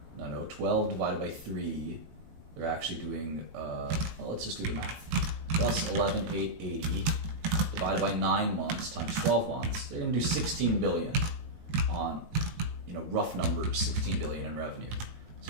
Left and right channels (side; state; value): left; late; 19 ms